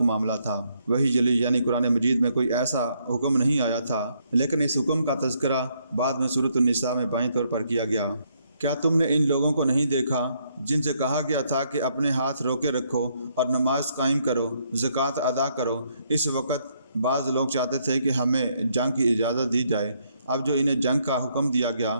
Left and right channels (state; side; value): inverted; both; correlation -0.73